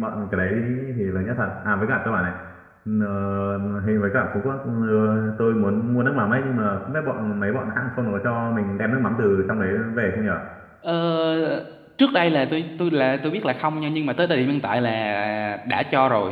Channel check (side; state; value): both; identical; correlation 1.00